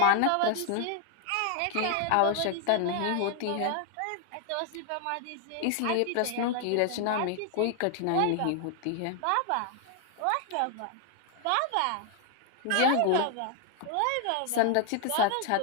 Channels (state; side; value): different; both; correlation 0.00